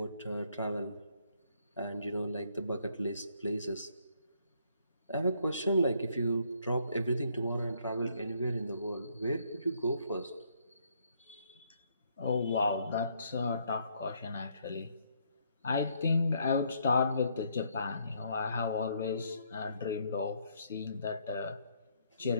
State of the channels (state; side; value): inverted; both; correlation -0.70